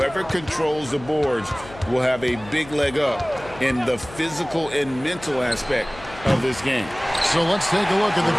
controls the boards will have a big leg up in the physical and mental aspect of this game. So let's take a look at the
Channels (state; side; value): noise; left; hum, 18 dB below the sound